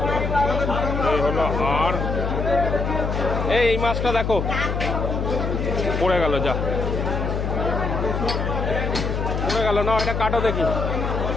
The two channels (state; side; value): noise; left; hum, 1 dB below the sound